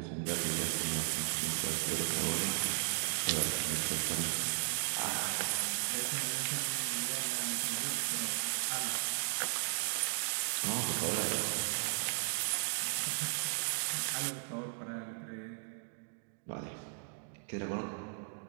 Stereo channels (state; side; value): silent; left; digital silence